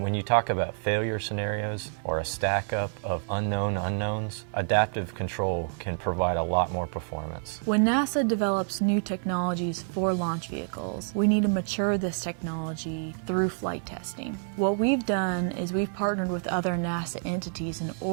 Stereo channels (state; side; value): silent; left; 59 dB below the other